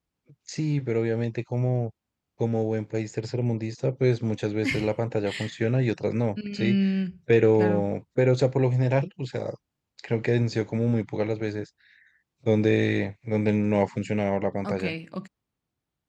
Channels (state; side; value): identical; both; correlation 1.00